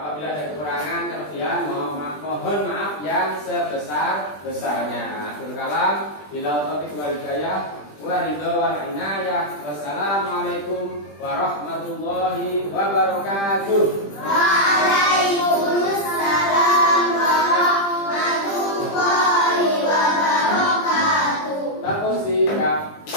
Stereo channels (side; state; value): right; late; 20 ms